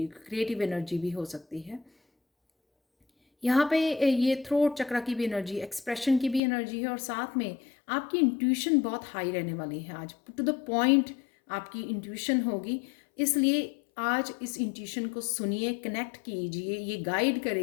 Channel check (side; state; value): right; drops out; at 6.4 s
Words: क्रिएटिव एनर्जी भी हो सकती है। यहाँ पे ये थ्रोट चक्रा की भी एनर्जी, एक्सप्रेशन की भी एनर्जी है और साथ में आपकी इंट्यूशन बहुत हाई रहने वाली है आज। टू द पॉइंट आपकी इंट्यूशन होगी, इसलिए आज इस इंट्यूशन को सुनिए, कनेक्ट कीजिए। ये गाइड